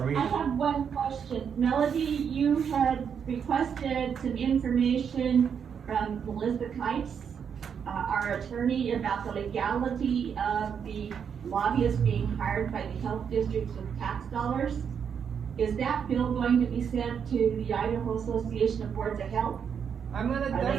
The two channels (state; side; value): quieter; left; 7.3 dB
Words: I meeting. have one question. Melody, you had requested some information from Melissa Kites, our attorney, about the legality of the lobbyists being hired by the health districts with tax dollars. Is that bill going to be sent to the Idaho Association of Boards of Health? I'm gonna Are they gonna